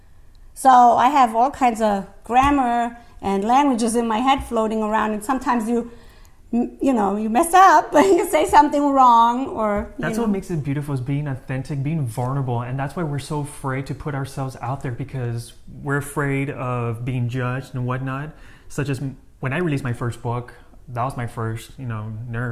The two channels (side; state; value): both; identical; correlation 1.00